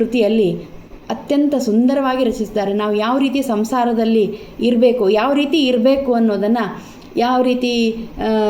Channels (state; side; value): identical; both; correlation 1.00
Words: ಅತ್ಯಂತ ಸುಂದರವಾಗಿ ರಚಿಸಿದ್ದಾರೆ. ನಾವು ಯಾವ ರೀತಿ ಸಂಸಾರದಲ್ಲಿ ಇರಬೇಕು, ಯಾವ ರೀತಿ ಇರಬೇಕು ಅನ್ನೋದನ್ನು, ಯಾವ ರೀತಿ